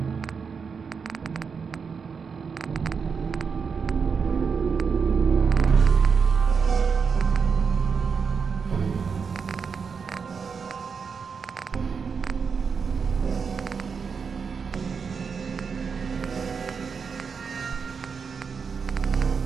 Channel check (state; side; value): quieter; left; 5.8 dB